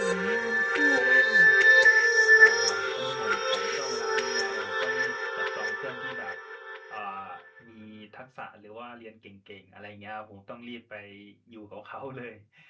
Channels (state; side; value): identical; both; correlation 1.00